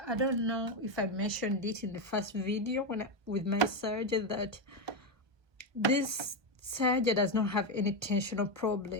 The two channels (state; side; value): late; left; 1.1 ms